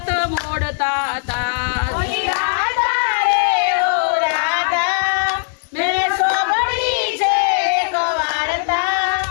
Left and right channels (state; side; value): silent; right; 61 dB below the other